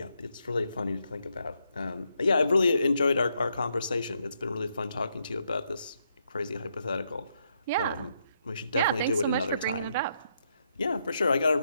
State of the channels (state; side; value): inverted; both; correlation -0.78